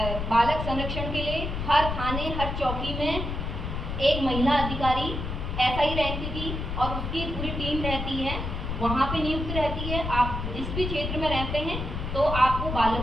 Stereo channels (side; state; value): left; noise; rumble, 4 dB below the sound